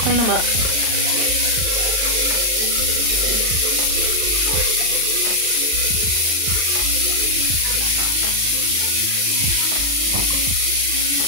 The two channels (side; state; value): left; late; 39 ms